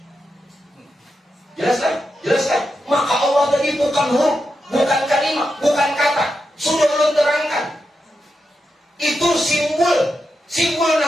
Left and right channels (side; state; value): both; normal; correlation 0.87